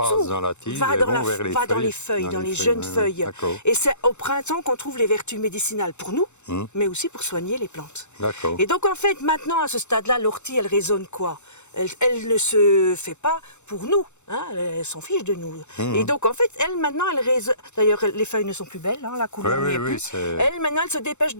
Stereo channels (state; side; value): late; right; 0.83 ms